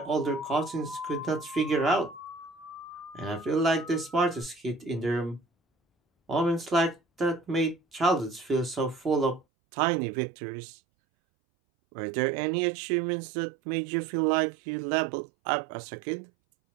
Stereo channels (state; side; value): drops out; left; at 9.5 s